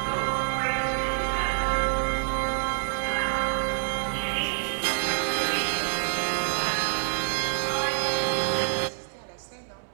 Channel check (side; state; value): left; silent; 60 dB below the other